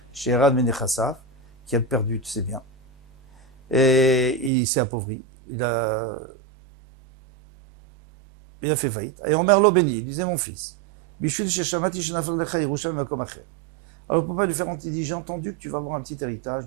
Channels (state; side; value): drops out; left; at 4.5 s